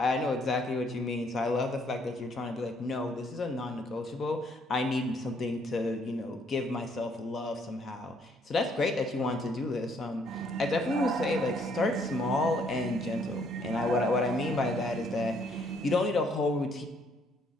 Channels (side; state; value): both; normal; correlation 0.67